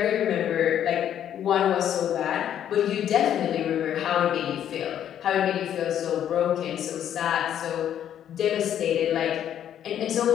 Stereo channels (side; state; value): right; quieter; 10.2 dB